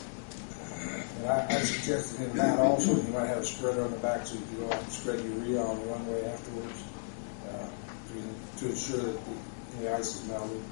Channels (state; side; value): silent; right; digital silence